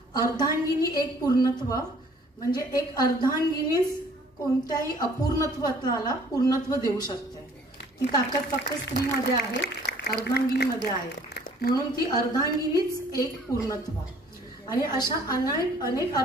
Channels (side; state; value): both; normal; correlation 0.57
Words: अर्धांगिनी एक पूर्णत्व, म्हणजे एक अर्धांगिनीच कोणत्याही अपूर्णत्वाला पूर्णत्व देऊ शकते. ती ताकद फक्त स्त्रीमध्ये आहे, अर्धांगिनीमध्ये आहे. म्हणून ती अर्धांगिनीच एक पूर्णत्व. आणि अशा अनेक